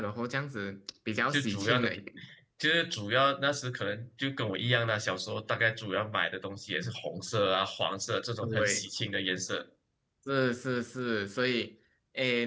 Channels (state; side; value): identical; both; correlation 1.00